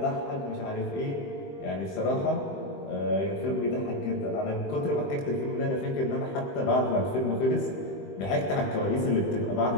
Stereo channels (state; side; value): late; right; 21 ms